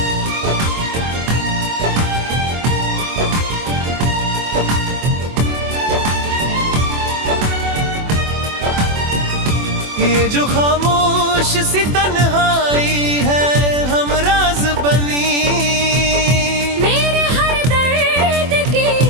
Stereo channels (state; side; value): late; left; 24 ms